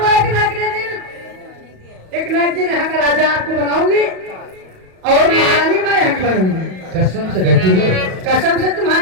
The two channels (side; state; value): left; late; 37 ms